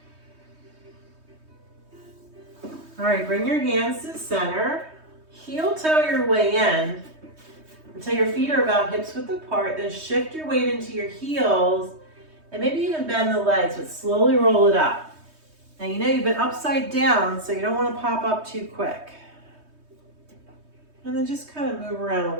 All right, bring your hands to the center. Heel toe your way in until your feet are about hips width apart. Then shift your weight into your heels and maybe even bend the legs, but slowly roll it up. Now you know you've been upside down, so you don't want to pop up too quick. And then just kind of move around a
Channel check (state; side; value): late; left; 3.2 ms